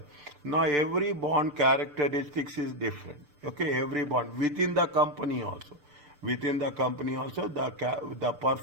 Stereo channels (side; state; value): left; late; 6.8 ms